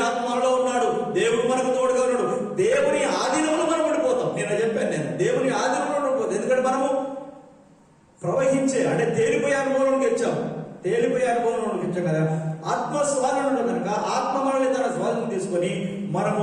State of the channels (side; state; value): both; identical; correlation 1.00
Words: ఆత్మలో ఉన్నాడు, దేవుడు మనకు తోడుగా ఉన్నాడు. దేవుని ఆధీనంలో మనం ఉండిపోతాం. నేను దేవుని ఆధీనంలో ఉండిపోతాం. ఎందుకంటే మనము ప్రవహించే అంటే తేలిపోయే అనుభవంలోకి వచ్చాం కదా. ఆత్మ స్వాధీనంలో కనుక ఆత్మ మనల్ని తన స్వాధీనం తీసుకొని మనము